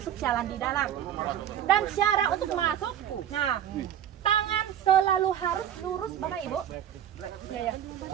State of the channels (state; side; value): quieter; left; 10.2 dB